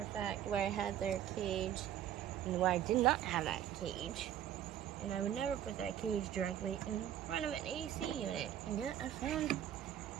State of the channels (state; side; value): quieter; left; 10.9 dB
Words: fact where I had their cage and where I did not have that cage. And I would never put that cage directly in front of an AC unit. And yet I found